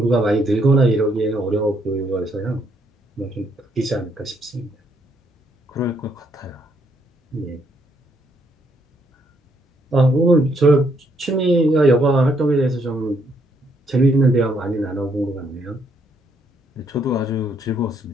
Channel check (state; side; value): normal; both; correlation 0.72